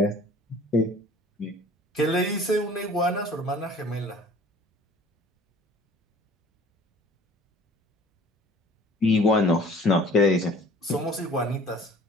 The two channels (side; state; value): both; normal; correlation 0.49